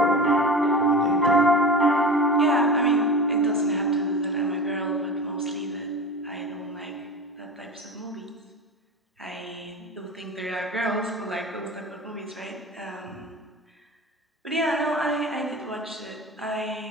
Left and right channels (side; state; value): both; normal; correlation 0.31